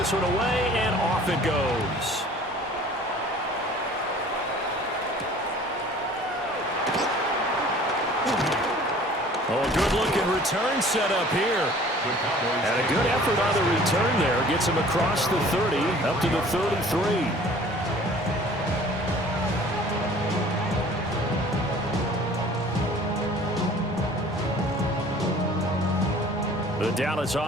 one away, and off it goes. Oh, a good-looking return set up here. And a good effort on the return there. Gets him across the 30, up to the 33. The Dallas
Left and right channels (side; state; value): both; normal; correlation 0.49